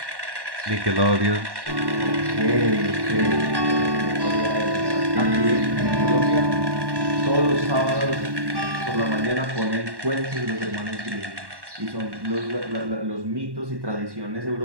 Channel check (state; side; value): late; left; 1.1 ms